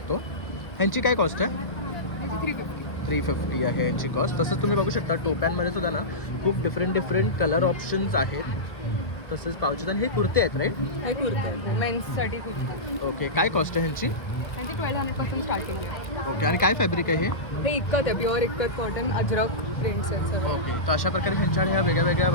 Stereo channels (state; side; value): late; right; 1.2 ms